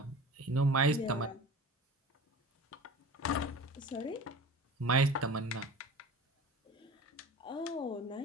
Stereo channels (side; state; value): both; normal; correlation 0.38